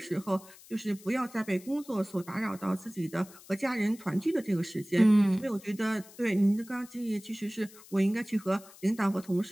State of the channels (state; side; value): noise; left; hiss, 21 dB below the sound